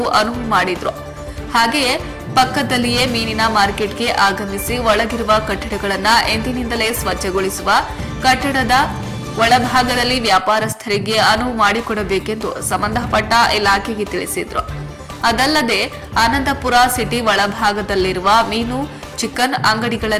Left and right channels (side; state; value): both; identical; correlation 1.00